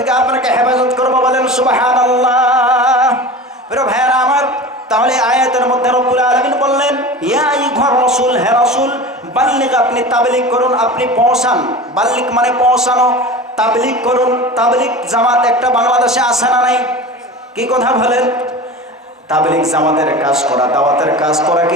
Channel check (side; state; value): both; normal; correlation 0.33